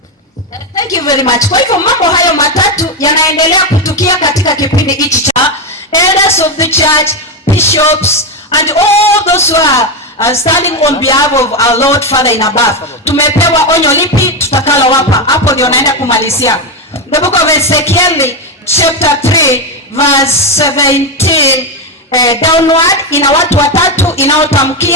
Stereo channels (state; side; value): normal; both; correlation 0.09